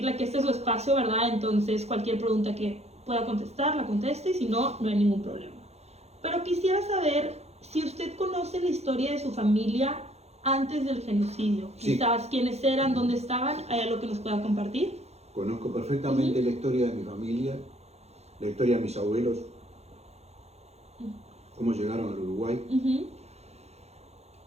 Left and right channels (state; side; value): late; left; 0.31 ms